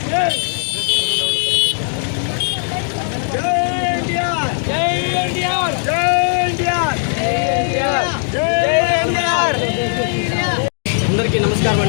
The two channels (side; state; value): right; silent; digital silence